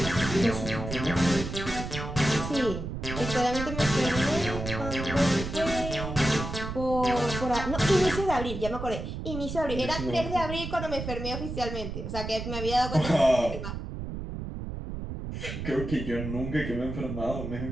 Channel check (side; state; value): right; noise; rumble, 6 dB below the sound